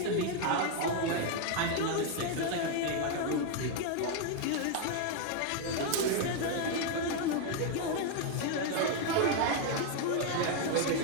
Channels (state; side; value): different; both; correlation 0.01